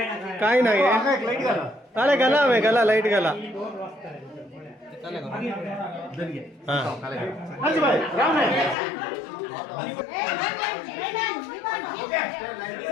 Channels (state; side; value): drops out; right; at 8.8 s